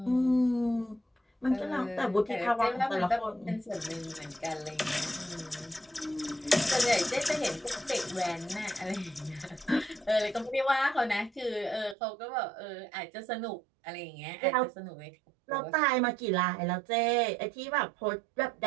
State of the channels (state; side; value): drops out; left; at 12.0 s